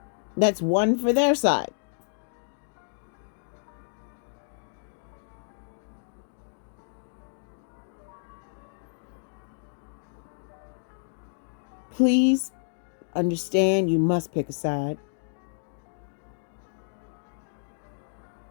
That's one for their side. Please understand, you must pick a side.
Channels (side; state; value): right; silent; digital silence